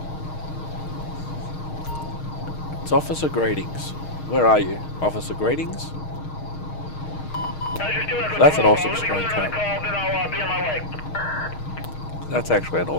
It's Officer Greetings. Where are you? Officer Greetings? That's an awesome screen cap. That's actually an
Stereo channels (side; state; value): right; late; 6.5 ms